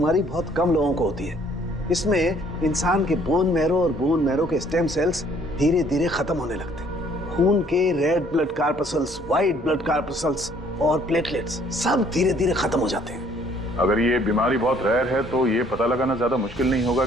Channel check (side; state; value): both; normal; correlation 0.61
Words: बहुत कम लोगों को होती है। इसमें इंसान के बोन मैरो और बोन मैरो के स्टेम सेल्स धीरे धीरे खत्म होने लगते हैं। खून के red blood corpuscles, white blood corpuscles और प्लेटलेट्स सब धीरे धीरे खत्म हो जाते हैं। अगर ये बीमारी बहुत रेयर है तो ये पता लगाना ज्यादा मुश्किल नहीं होगा